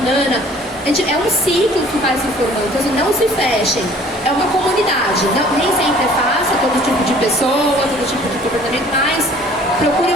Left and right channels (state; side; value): normal; both; correlation 0.53